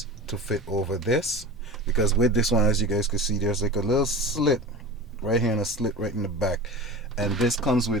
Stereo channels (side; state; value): both; normal; correlation 0.31